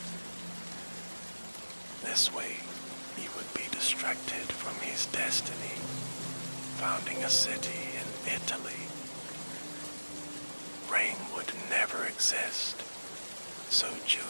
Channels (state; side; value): inverted; both; correlation -1.00